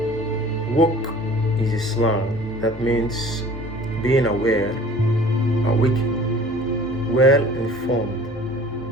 woke is a slang that means being aware, awake, well informed,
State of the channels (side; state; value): both; normal; correlation 0.47